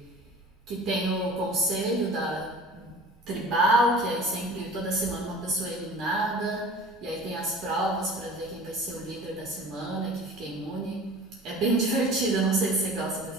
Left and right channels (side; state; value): both; normal; correlation 0.42